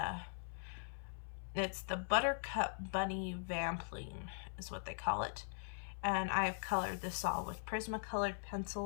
it's the Buttercup Bunny Vampling is what they call it. And I've colored this all with Prismacolor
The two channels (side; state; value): right; silent; 50 dB below the other